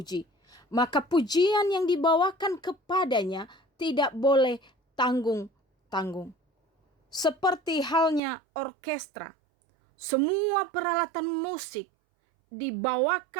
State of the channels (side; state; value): left; drops out; at 8.2 s